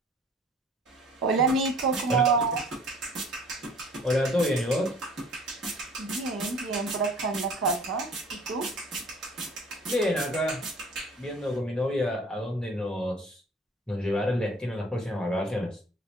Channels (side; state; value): both; normal; correlation 0.50